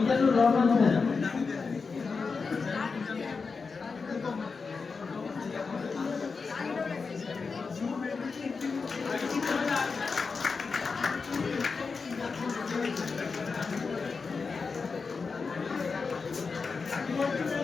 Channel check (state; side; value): quieter; right; 4.8 dB